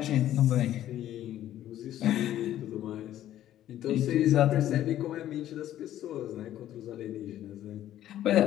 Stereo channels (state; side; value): quieter; right; 12.4 dB